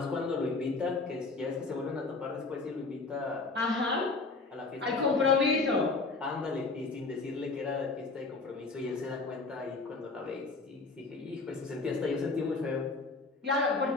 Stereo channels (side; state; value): right; quieter; 3.8 dB